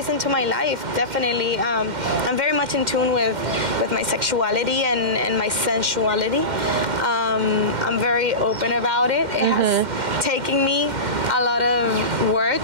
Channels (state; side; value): late; left; 2.1 ms